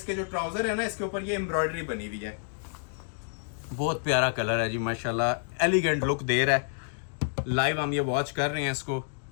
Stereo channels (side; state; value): right; silent; digital silence